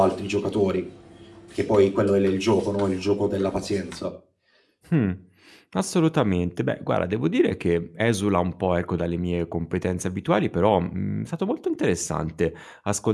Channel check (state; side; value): identical; both; correlation 1.00